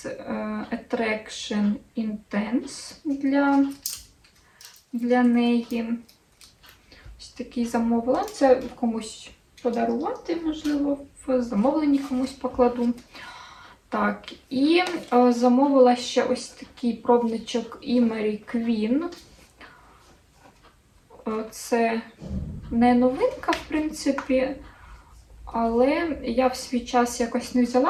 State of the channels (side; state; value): both; identical; correlation 1.00